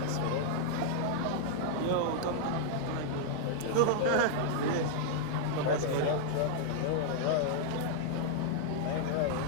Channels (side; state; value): both; different; correlation -0.01